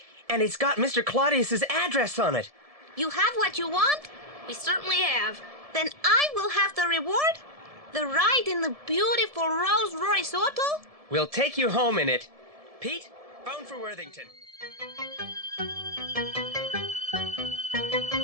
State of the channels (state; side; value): late; left; 1.7 ms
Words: and it's got Mr. Claudius's address on it. You have what you want? We certainly have. Then I will have the reward? The ride in the beautiful Rolls-Royce auto? We'll take you home in it. Pete, phone for Worthington.